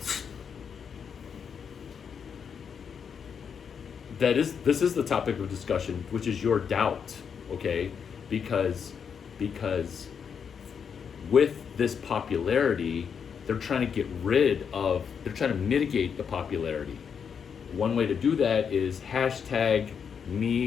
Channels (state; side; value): quieter; right; 6.9 dB